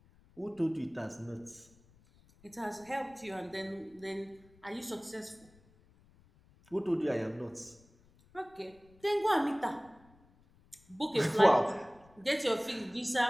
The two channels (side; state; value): left; noise; rumble, 28 dB below the sound